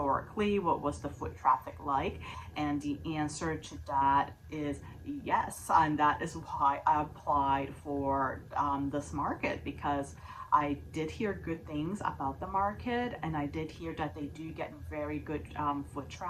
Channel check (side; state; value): both; identical; correlation 1.00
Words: What was the foot traffic like? And the answer to that is yes. And that is why I applied for this market, because I did hear good things about the market, and I did hear that they do get very good foot